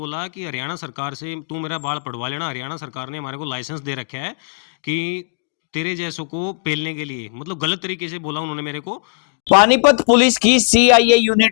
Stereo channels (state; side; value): silent; right; digital silence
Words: कि हरियाणा सरकार से तू मेरा बाल पड़वा लेना। हरियाणा सरकार ने हमारे को लाइसेंस दे रखा है कि तेरे जैसों को पेलने के लिए, मतलब गलत तरीके से बोला उन्होंने मेरे को। पानीपत पुलिस की सीआईए